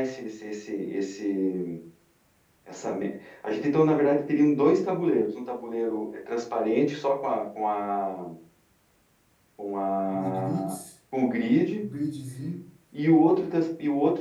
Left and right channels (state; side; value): identical; both; correlation 1.00